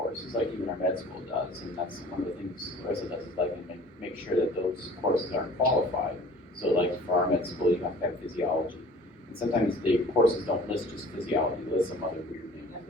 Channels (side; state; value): both; normal; correlation 0.48